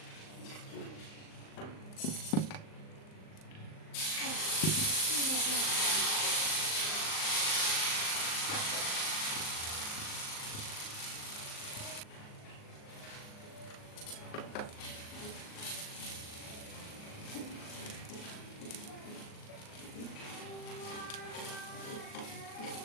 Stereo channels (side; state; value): right; late; 38 ms